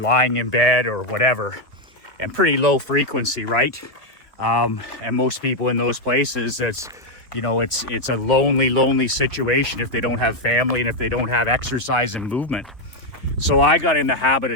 in bed or whatever, and pretty low frequency, right? And most people in those places, it's, you know, it's a lonely situation if they don't have family and if they don't have exercise and movement. So I got in the habit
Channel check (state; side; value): normal; both; correlation 0.02